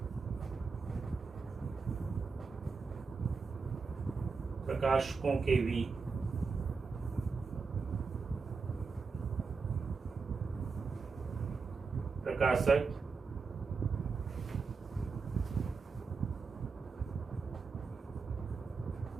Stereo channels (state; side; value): quieter; left; 4.8 dB